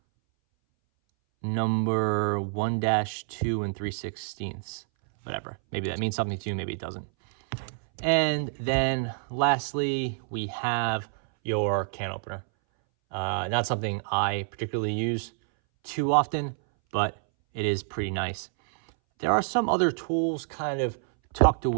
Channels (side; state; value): left; silent; 60 dB below the other